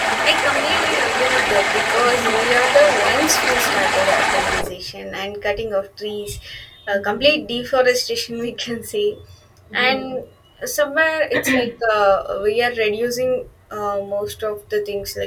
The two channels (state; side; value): identical; both; correlation 1.00